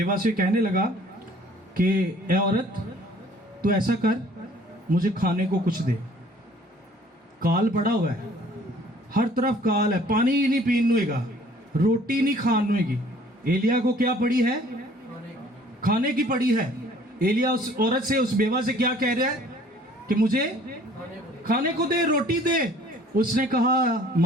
से कहने लगा कि ए औरत, तू ऐसा कर, मुझे खाने को कुछ दे। काल पड़ा हुआ है, हर तरफ काल है, पानी ही नहीं पीन हुएगा, रोटी नहीं खान हुएगी। एलिया को क्या पड़ी है? खाने की पड़ी है। एलिया उस औरत से, उस बेवा से क्या कह रहा है कि मुझे खाने को दे, रोटी दे। उसने कहा,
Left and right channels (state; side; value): normal; both; correlation 0.55